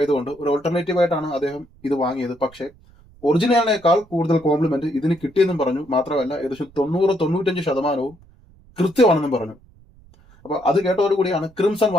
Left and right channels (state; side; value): noise; right; rumble, 27 dB below the sound